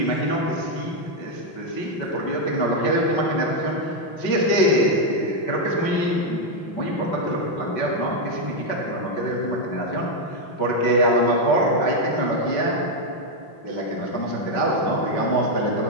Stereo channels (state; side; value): late; right; 5.3 ms